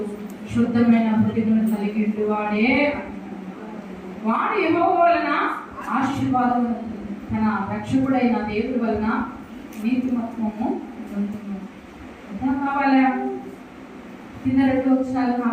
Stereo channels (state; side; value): identical; both; correlation 1.00